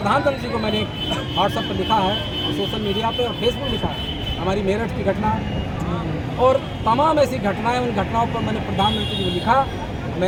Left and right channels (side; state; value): both; identical; correlation 1.00